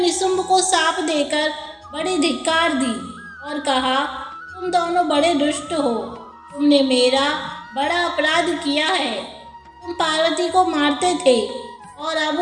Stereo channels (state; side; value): identical; both; correlation 1.00